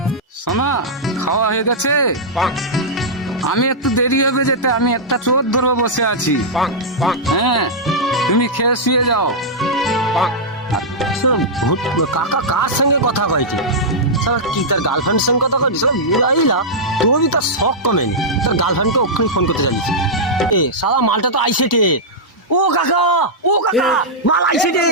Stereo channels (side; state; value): both; normal; correlation -0.10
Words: শোনা, খাওয়া হয়ে গেছে? আমি একটু দেরি হবে যেতে, আমি একটা চোর ধরবো বসে আছি। হ্যাঁ, তুমি খেয়ে শুয়ে যাও। কাকা কার সঙ্গে কথা কইছি? সারা কি তার গার্লফ্রেন্ড সঙ্গে কথা কইছি? সব বুলাইলা তুই তার শখ কমেনি, তার গার্লফ্রেন্ডকে ওখানে ফোন করতে জানিস। এ সারা মালটা তো আইছে রে। ও কাকা, ও কাকা, মাল আইছে রে।